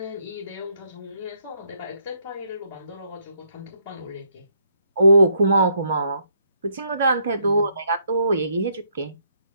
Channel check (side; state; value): both; inverted; correlation -0.71